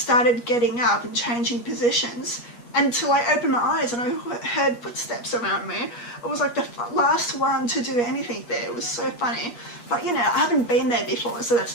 getting up and changing positions until I opened my eyes and I heard footsteps around me. I was like the last one to do anything there. It was so funny. But you know, I haven't been there before, so that's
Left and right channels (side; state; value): right; late; 8.4 ms